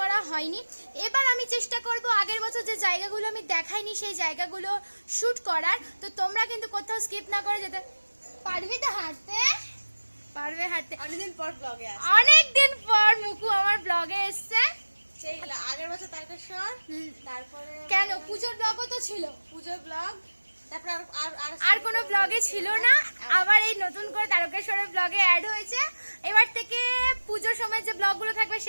হয়নি। এবার আমি চেষ্টা করব আগের বছর যে জায়গাগুলো আমি দেখাইনি সেই জায়গাগুলো শ্যুট করার। তো তোমরা কিন্তু কোথাও স্কিপ না করে যেতে পারবি। তো হাঁটতে পারবে, হাঁটতে অনেকদিন পর মুকু আমার ব্লগে এসছে। আগের বছর তারকেশ্বর, তারপরে কেন পুজোর ব্লগও তো ছিল, পুজোর ব্লগ, তারপর আর কোনো ব্লগে ছিল না। আবার এই নতুন করে তারকেশ্বরের ব্লগে অ্যাড হয়েছে। এবার থেকে পুজোর সময় যে ব্লগগুলো থাকবে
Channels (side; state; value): both; inverted; correlation -1.00